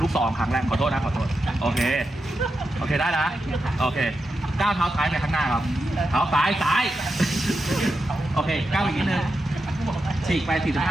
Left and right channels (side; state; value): both; normal; correlation 0.88